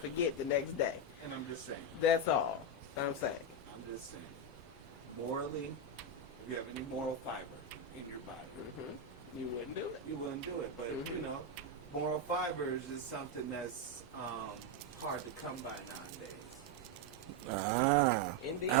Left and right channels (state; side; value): normal; both; correlation 0.06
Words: forget the next day. and I'm just saying, That's all I'm saying. I'm just saying, morally, if you have any moral fiber in your body, You wouldn't do it. you wouldn't do it. But you know, moral fibers is something that's hard to come by nowadays. Indeed.